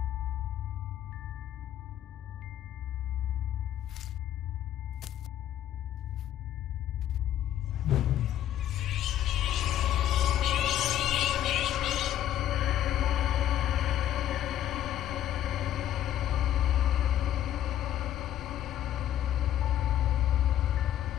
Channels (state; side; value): quieter; right; 11.7 dB